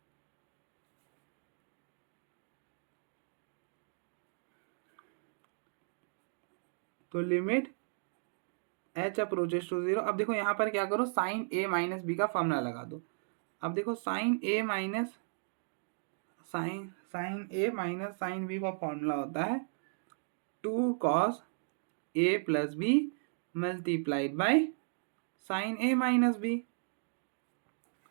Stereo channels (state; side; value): silent; left; digital silence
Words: तो लिमिट एच अप्रोचेस टू 0। अब देखो यहाँ पर क्या करो, साइन ए माइनस बी का फॉर्मूला लगा दो। अब देखो साइन ए माइनस साइन बी का फॉर्मूला होता है 2 cos A plus B multiplied by sine A minus B.